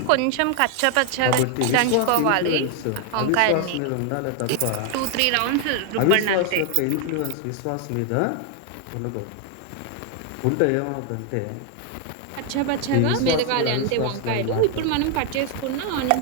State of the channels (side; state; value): both; different; correlation 0.00